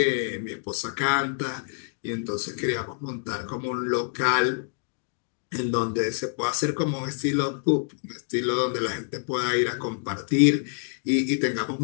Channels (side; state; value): right; silent; digital silence